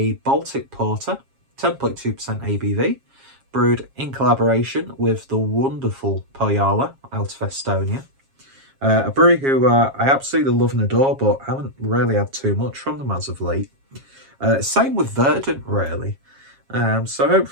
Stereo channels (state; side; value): late; left; 7.4 ms